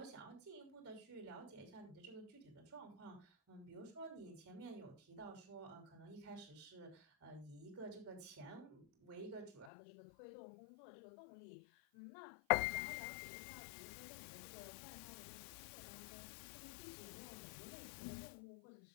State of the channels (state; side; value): drops out; right; at 9.7 s